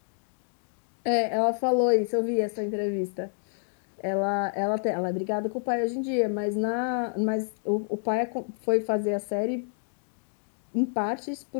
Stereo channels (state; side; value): silent; right; 59 dB below the other